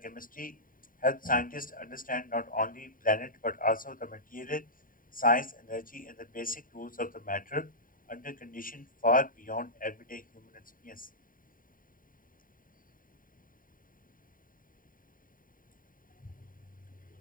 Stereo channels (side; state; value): right; late; 0.40 ms